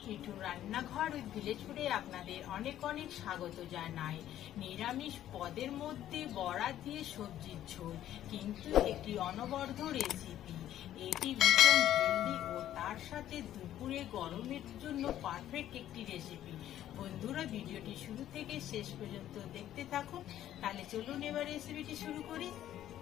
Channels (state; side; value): quieter; right; 12.1 dB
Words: মিঠুর রান্নাঘর উইথ ভিলেজ ফুডে আপনাদের অনেক অনেক স্বাগত জানাই। নিরামিষ পদের মধ্যে বড়া দিয়ে সবজির ঝোল, কিন্তু একটি অনবদ্য রেসিপি। এটি ভীষণ হেলদি ও তার সাথে দুপুরে গরমের জন্য পারফেক্ট একটি রেসিপি। বন্ধুরা, ভিডিওটি শুরু থেকে শেষ পর্যন্ত দেখতে থাকুন। তাহলে চলুন এবার রেসিপিটি শুরু করি।